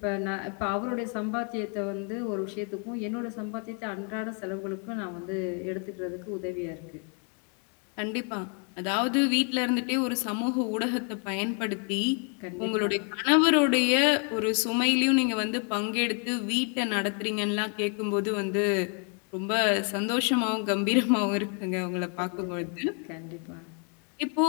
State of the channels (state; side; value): quieter; right; 39.3 dB